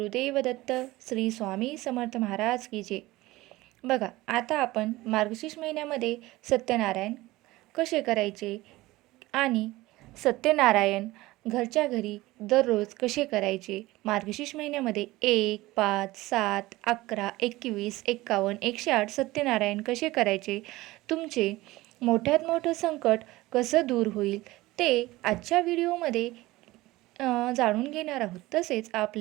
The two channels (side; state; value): left; quieter; 18.9 dB